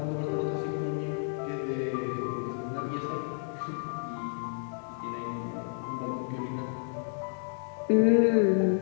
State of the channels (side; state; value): right; silent; 57 dB below the other